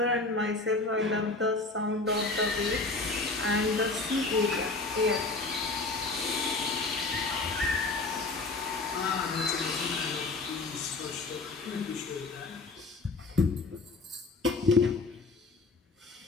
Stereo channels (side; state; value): right; quieter; 3.5 dB